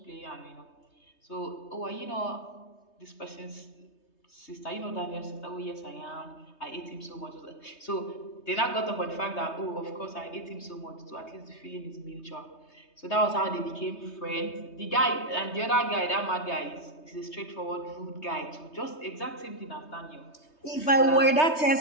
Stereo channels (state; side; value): late; right; 3.2 ms